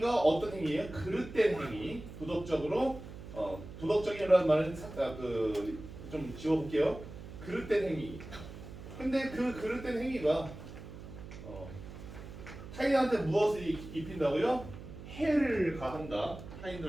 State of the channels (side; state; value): right; noise; hum, 13 dB below the sound